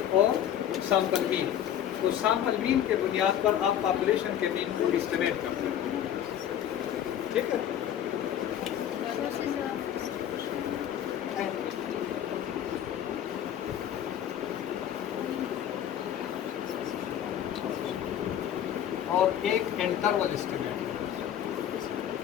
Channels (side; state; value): right; quieter; 10.3 dB